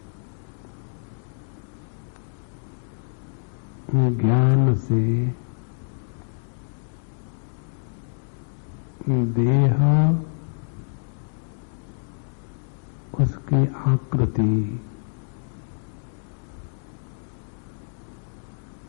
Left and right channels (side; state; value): right; silent; digital silence